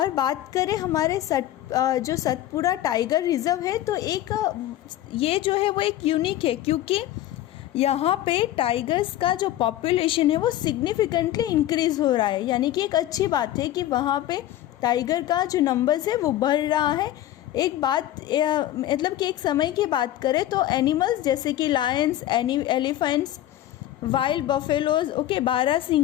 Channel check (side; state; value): right; quieter; 13.4 dB